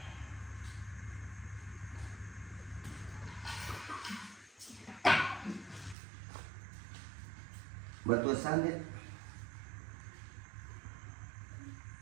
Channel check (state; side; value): drops out; left; at 6.0 s